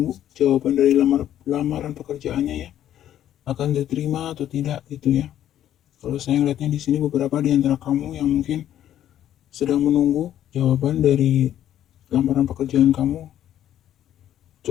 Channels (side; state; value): right; quieter; 11.4 dB